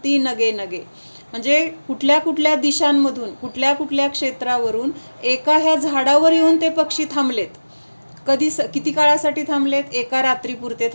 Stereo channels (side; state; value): both; inverted; correlation -1.00